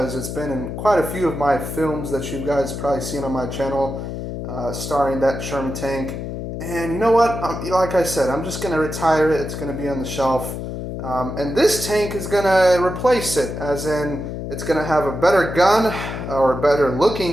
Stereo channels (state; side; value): noise; left; hum, 6 dB below the sound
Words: it's been in quite a few of my films that you guys probably seen on my channel starring that Sherman tank. And you know what? Like I said, I'm just going to retire it. It's going to be on the shelf. And this tank is going to replace it, as in it's going to have a better gun or a better